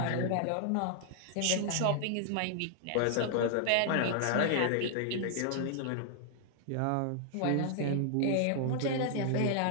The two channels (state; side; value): different; both; correlation 0.00